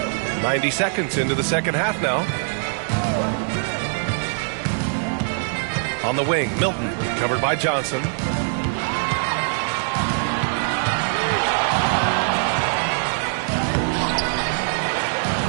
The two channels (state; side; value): silent; left; digital silence